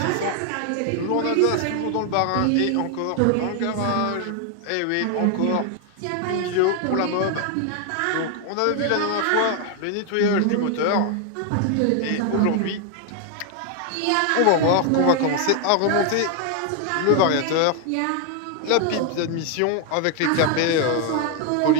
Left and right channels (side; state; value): both; different; correlation 0.01